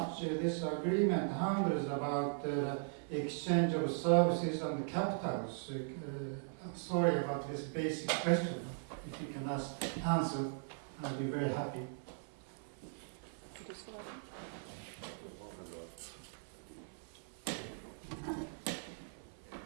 this agreement handles about exchange of services and capitals. Sorry about this basic question. If you can answer, I'd be very happy.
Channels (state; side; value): silent; left; 52 dB below the other